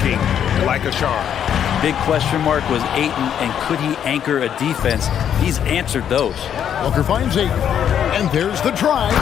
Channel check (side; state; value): right; quieter; 9.1 dB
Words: like a charm. Big question mark was Ayton, and could he anchor a defense? He's answered those. Booker finds Ayton. And there's the drive.